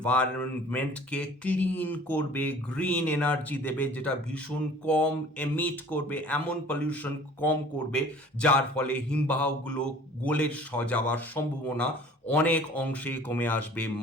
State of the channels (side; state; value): both; normal; correlation 0.49